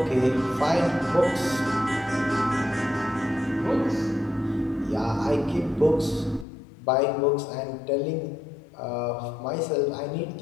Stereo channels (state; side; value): drops out; right; at 6.5 s